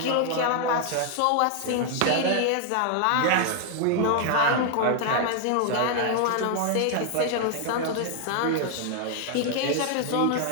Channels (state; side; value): different; both; correlation 0.00